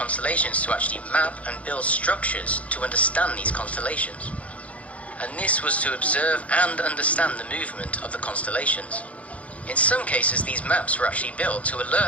to actually map and build structures to understand these constellations. And this was to observe and understand the movement of the constellations. In some cases, these maps were actually built to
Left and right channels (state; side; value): late; right; 0.066 ms